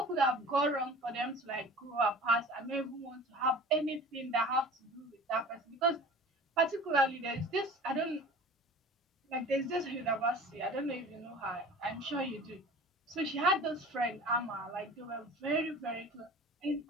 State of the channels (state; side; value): normal; both; correlation 0.41